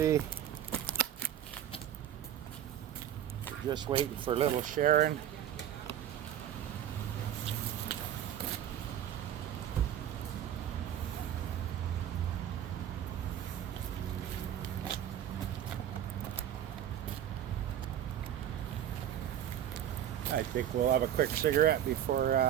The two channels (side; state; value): left; quieter; 10.6 dB